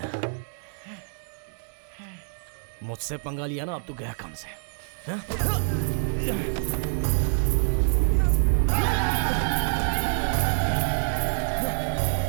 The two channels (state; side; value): silent; left; digital silence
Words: मुझसे पंगा लिया ना, अब तू गया काम से।